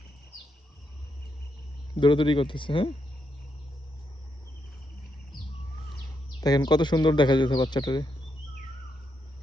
দৌড়াদৌড়ি করতেছে। হ্যাঁ দেখেন কত সুন্দর দেখা যাচ্ছে বাচ্চাটারে।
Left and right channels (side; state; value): both; normal; correlation 0.80